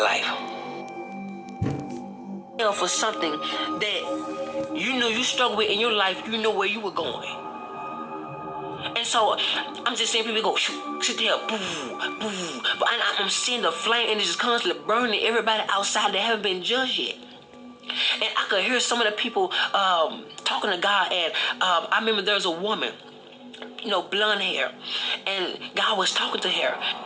For something that you knew you struggled with in your life, you know where you were going. And so I'm just seeing people go, sit there, boo, boo. But I'm seeing the flame and it's just constantly burning everybody outside that haven't been judged yet. And I could hear some of the people talking to God. And I remember there was a woman, blonde hair. And God was talking to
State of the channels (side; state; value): both; identical; correlation 1.00